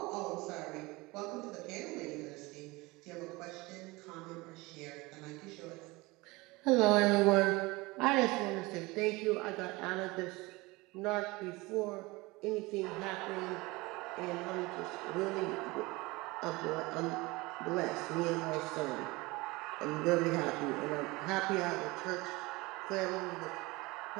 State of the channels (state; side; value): quieter; left; 22.9 dB